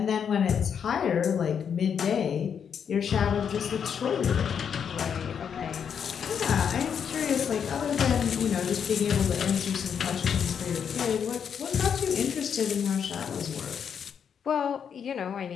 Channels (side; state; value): right; quieter; 7.5 dB